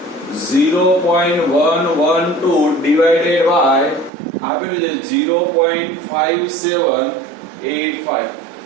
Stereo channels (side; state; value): left; drops out; at 4.1 s